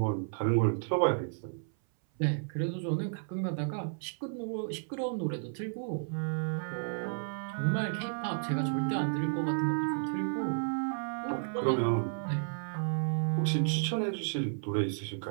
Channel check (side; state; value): left; silent; 56 dB below the other